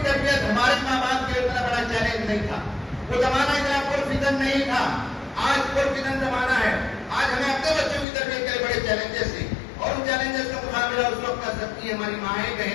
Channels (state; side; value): drops out; right; at 8.1 s